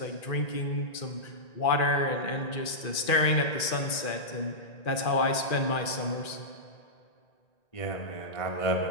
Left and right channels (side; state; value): right; late; 1.9 ms